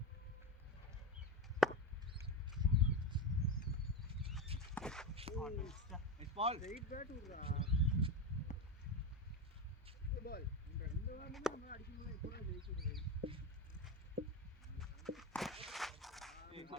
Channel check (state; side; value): normal; both; correlation 0.18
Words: பால் ரைட் பேட் விடுறா பால் இந்த வாரமே நம்ம அடிக்கணும் இப்போ ஜெயிச்சிருது